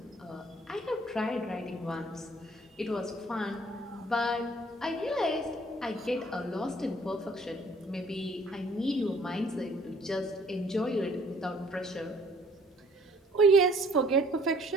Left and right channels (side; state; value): both; normal; correlation 0.58